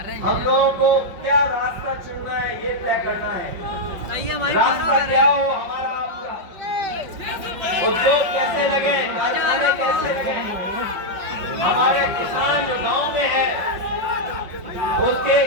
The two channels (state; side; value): late; left; 5.4 ms